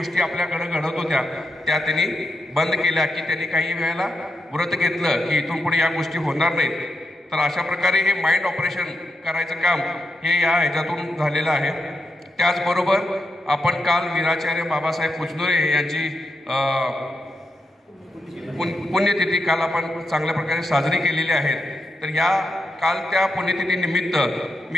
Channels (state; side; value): normal; both; correlation 0.85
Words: आपल्याकडे घडत होत्या त्या त्यांनी बंद केल्या की त्यांनी काही वेळेला व्रत घेतलं की इथून पुढे या गोष्टी होणार नाहीत. तर अशा प्रकारे हे माइंड ऑपरेशन करायचं काम हे या ह्याच्यातून झालेलं आहे. त्याचबरोबर आपण काल वीराचार्य बाबासाहेब पुजनुरे यांची पुण्यतिथी काल आपण चांगल्या प्रकारे साजरी केलेली आहे. तर या काल त्या पुण्यतिथीनिमित्त मी